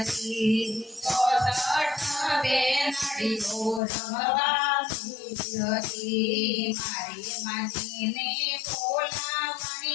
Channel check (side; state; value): right; drops out; at 3.8 s